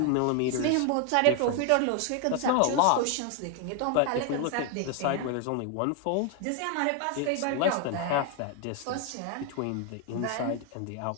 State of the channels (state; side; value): different; both; correlation 0.01